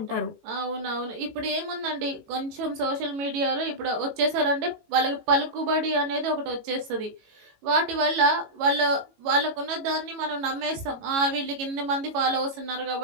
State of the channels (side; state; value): left; late; 18 ms